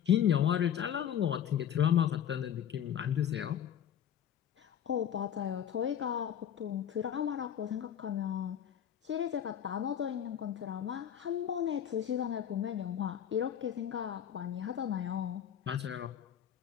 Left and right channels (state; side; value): quieter; right; 9.5 dB